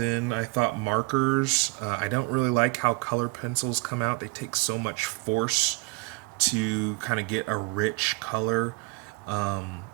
I thought markers. I don't really like how color pencils come out. They take so much force to kind of get a rich color.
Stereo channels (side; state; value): left; quieter; 25.3 dB